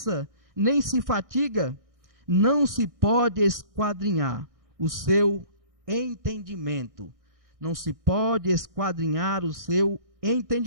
nem se fatiga, não se pode esquadrinhar o seu entendimento. Não se pode esquadrinhar o seu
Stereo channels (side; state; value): left; late; 1.6 ms